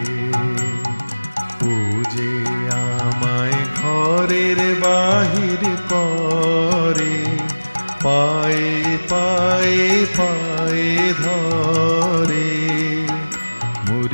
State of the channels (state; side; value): inverted; both; correlation -1.00